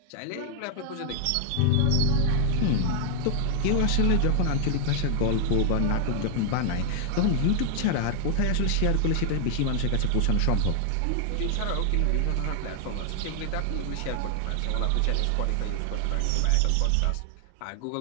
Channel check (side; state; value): both; different; correlation 0.00